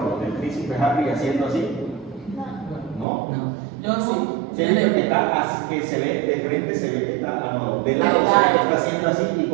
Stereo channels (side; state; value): left; drops out; at 3.1 s